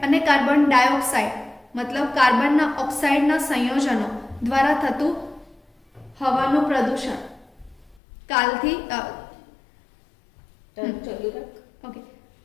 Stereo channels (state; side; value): drops out; right; at 8.0 s